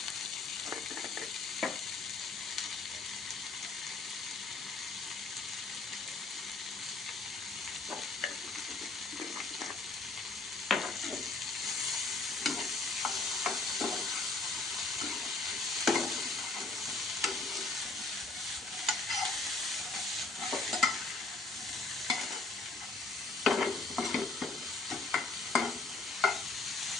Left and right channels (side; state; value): right; quieter; 3.7 dB